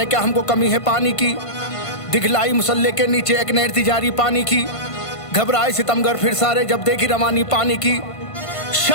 क्या हमको कमी है पानी की, दिखलाई मुसल्ले के नीचे एक नहर थी जारी पानी की। घबराए सितमगर फिर सारे जब देखी रवानी पानी की।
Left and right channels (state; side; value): late; right; 1.5 ms